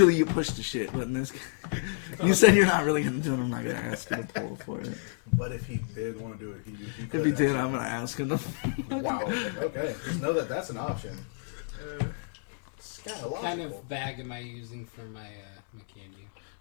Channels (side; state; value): right; silent; 58 dB below the other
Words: you push the shit, but in this case, you said you're not really gonna do it. I'm not gonna ask you to pull for it. But if he did want to do it, he could. If he did, actually. I'm gonna ask him. Wow. Okay. Just know that that's an option. What Scatological. kind of bag am I using for my my